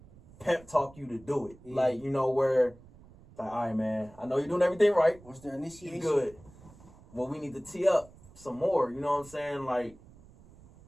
pep talk you to do it. Yeah. Like, you know, where like, all right, man, I know you're doing everything right. What's their initiation? You good. Well, we need to tee up some more, you know what I'm saying? Like,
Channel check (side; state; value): right; noise; rumble, 23 dB below the sound